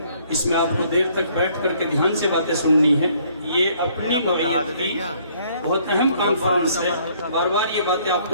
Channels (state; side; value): inverted; both; correlation -0.63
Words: اس میں آپ کو دیر تک بیٹھ کر کے دھیان سے باتیں سننی ہیں۔ یہ اپنی نوعیت کی بہت اہم کانفرنس ہے، بار بار یہ باتیں آپ